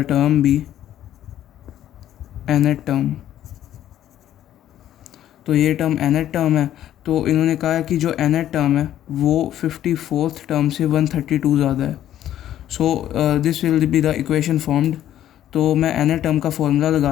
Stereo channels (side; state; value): right; quieter; 11.8 dB